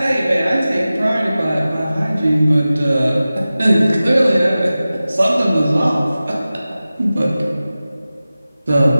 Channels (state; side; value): inverted; both; correlation -0.96